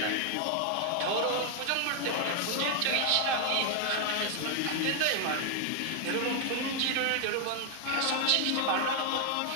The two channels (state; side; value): different; both; correlation 0.00